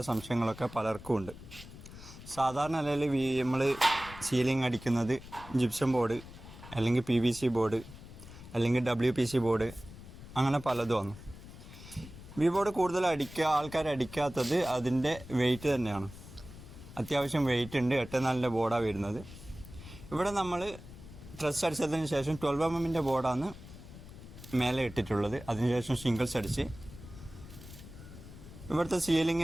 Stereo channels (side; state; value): left; noise; rumble, 16 dB below the sound